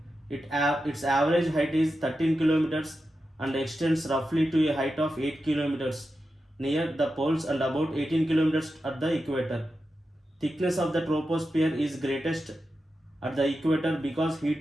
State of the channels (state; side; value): normal; both; correlation 0.90